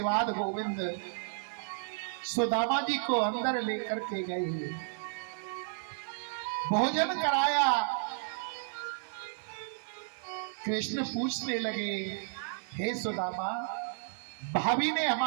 बाद गोविंद सुदामा जी को अंदर लेकर के गए, भोजन कराया। कृष्ण पूछने लगे, हे सुदामा, भाभी ने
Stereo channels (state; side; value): silent; left; 56 dB below the other